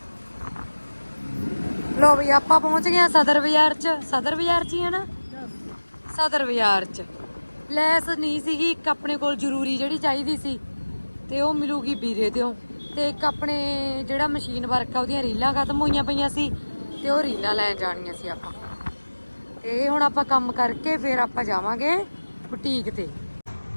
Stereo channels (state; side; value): inverted; both; correlation -1.00